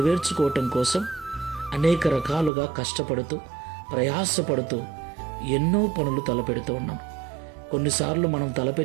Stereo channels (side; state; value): left; drops out; at 2.5 s